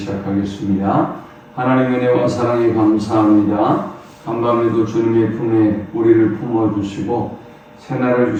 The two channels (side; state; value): both; identical; correlation 1.00